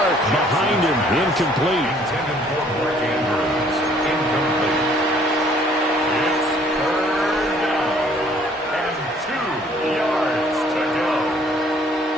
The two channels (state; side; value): normal; both; correlation 0.60